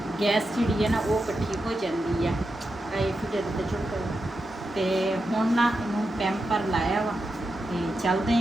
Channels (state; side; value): normal; both; correlation 0.88